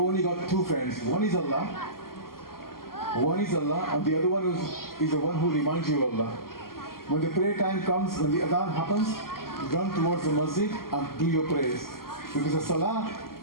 got two friends. One is Allah, and the other one is the one who reminds you of Allah. When the prayer time comes, when the adhan happens, run towards the masjid and do your prayers. Because the salah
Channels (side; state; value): right; late; 0.92 ms